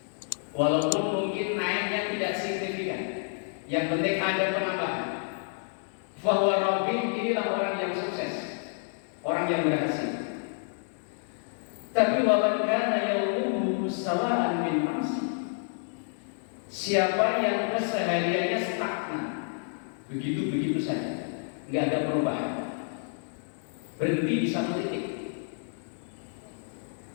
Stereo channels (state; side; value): silent; right; digital silence